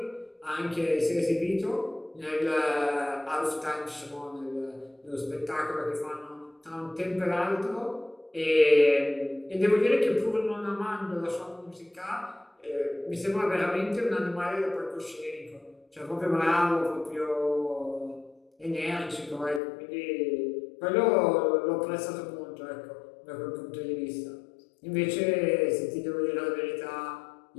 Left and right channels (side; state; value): right; drops out; at 19.6 s